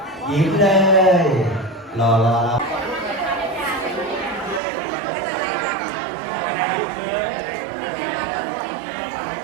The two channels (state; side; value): drops out; left; at 4.6 s